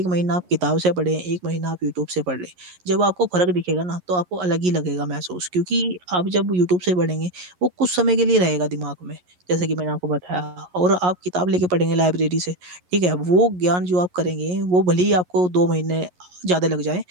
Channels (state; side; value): late; left; 11 ms